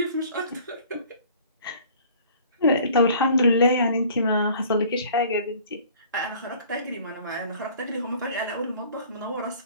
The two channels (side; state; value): both; inverted; correlation -0.51